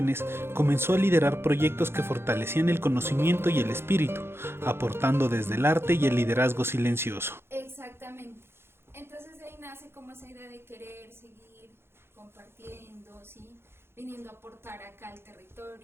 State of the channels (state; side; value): late; left; 0.12 ms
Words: comenzó a liderar proyectos que fortalecían el conocimiento y el espíritu, aportando desde el arte y el liderazgo silencioso. Exactamente. Entonces de ahí nace como esa idea de querer seguir compartiendo, ¿sí? Viniendo a aportar acá al